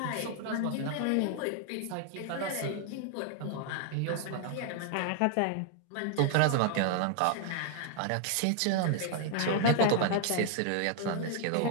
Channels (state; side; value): different; both; correlation 0.00